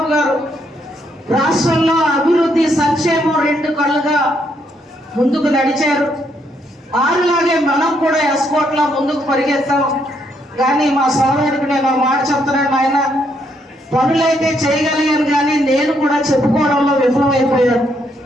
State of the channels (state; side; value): normal; both; correlation 0.74